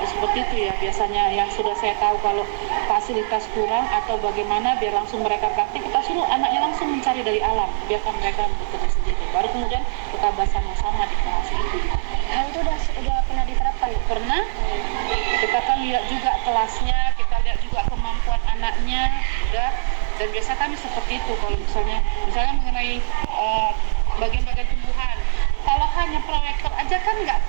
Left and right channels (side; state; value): left; silent; 60 dB below the other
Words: seperti itu ya biasanya yang sudah saya tahu, kalau fasilitas kurang atau bagaimana biar langsung mereka praktik, kita suruh anaknya langsung mencari dari alam, biarkan mereka bekerja sendiri, baru kemudian kita bahas sama-sama di kelas itu. Nah itu udah pernah diterapkan? Pernah. Kita kan lihat juga kelasnya, kita lihat juga kemampuan anaknya, udah. Dan biasa kami seperti itu kalau misalnya mengenai bagian-bagian tumbuhan. Kalau hanya proyektor aja kan nggak